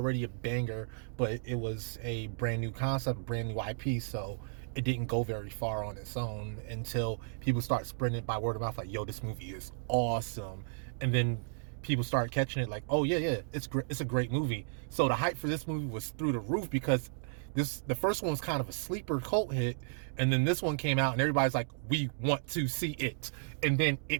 a banger, but it was a brand new concept, brand new IP, so it didn't go very far on its own until people start spreading it by word of mouth, like, yo, this movie is awesome. And then people start catching it like, oh yeah, it's a great movie. So the hype for this movie was through the roof because the first one was kind of a sleeper cult hit, and then this one came out and everybody's like, we want to see it. And then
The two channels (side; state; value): left; silent; digital silence